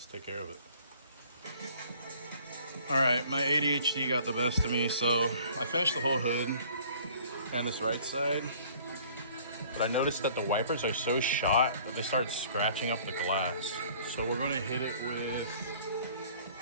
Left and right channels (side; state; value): both; inverted; correlation -0.54